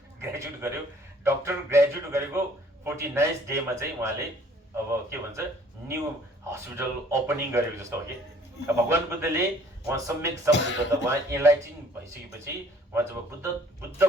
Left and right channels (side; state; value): both; normal; correlation 0.57